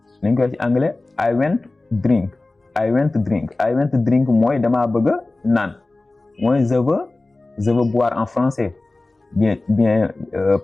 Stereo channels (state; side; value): quieter; right; 3.0 dB